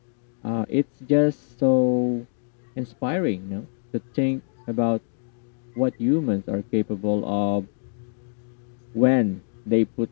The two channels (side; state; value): right; silent; digital silence